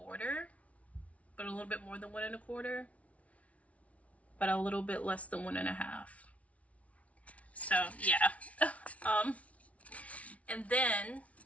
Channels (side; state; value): right; late; 0.066 ms